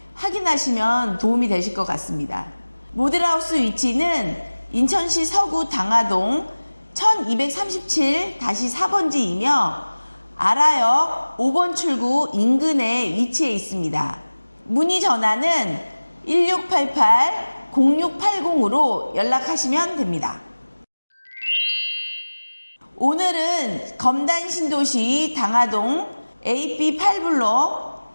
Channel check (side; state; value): both; inverted; correlation -1.00